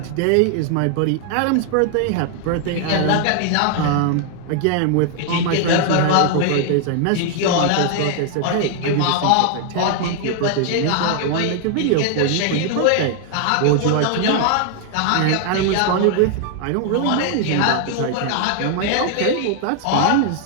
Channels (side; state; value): both; different; correlation 0.00